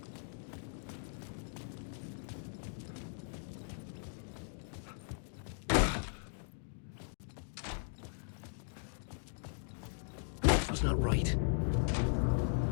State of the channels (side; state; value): right; silent; digital silence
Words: Was not right.